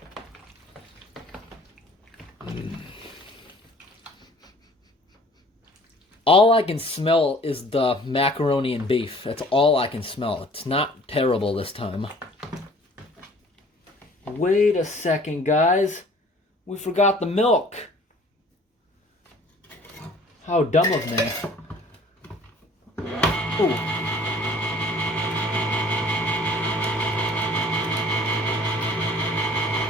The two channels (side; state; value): both; normal; correlation 0.52